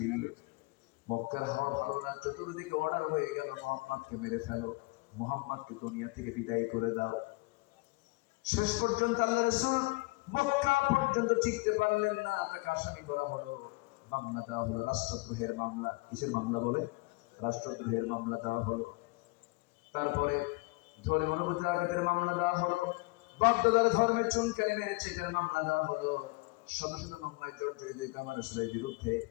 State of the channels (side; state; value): right; quieter; 24.6 dB